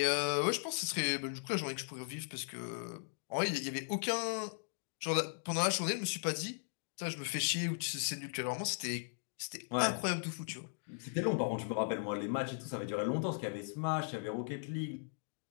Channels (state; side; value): silent; right; digital silence